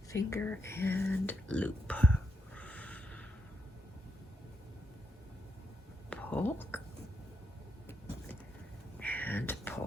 finger, and loop. Pull and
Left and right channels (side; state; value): both; normal; correlation 0.81